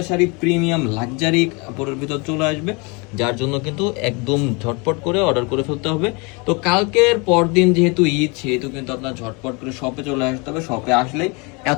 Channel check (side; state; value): right; quieter; 29.7 dB